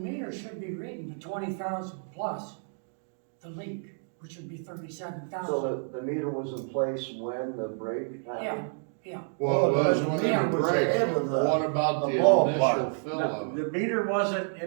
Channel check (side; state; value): left; silent; digital silence